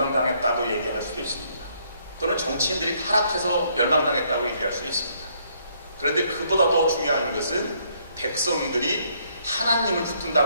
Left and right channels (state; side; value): inverted; both; correlation -0.69